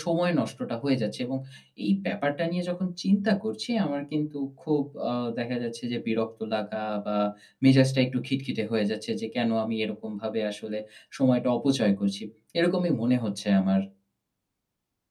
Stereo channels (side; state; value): both; identical; correlation 1.00